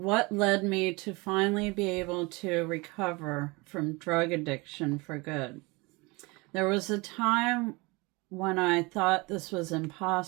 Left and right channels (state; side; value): quieter; left; 25.8 dB